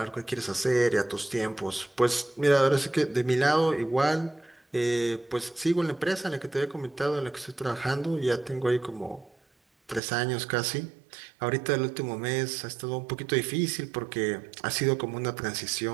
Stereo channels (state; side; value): drops out; left; at 10.0 s